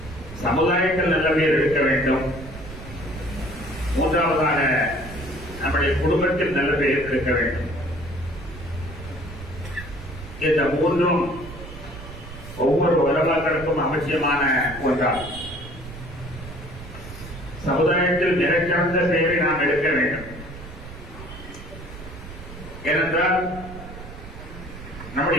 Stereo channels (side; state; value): right; noise; rumble, 13 dB below the sound